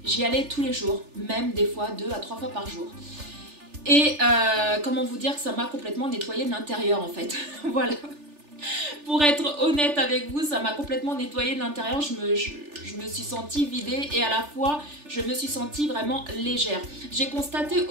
j'y allais tous les jours, même des fois 2 à 3 fois par jour. Et comment vous dire que ça m'a complètement nettoyé de l'intérieur en fait. Voilà. Pour être honnête avec vous, ça m'a complètement nettoyé de l'intérieur. Je me suis sentie vidée et à la fois, je me suis sentie vraiment légère. J'ai constaté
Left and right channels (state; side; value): late; left; 3.4 ms